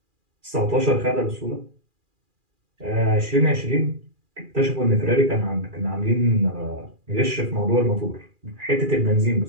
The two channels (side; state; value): left; late; 2.4 ms